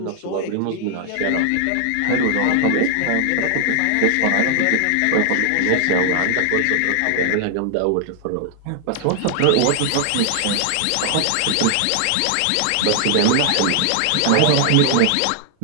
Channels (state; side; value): different; both; correlation 0.00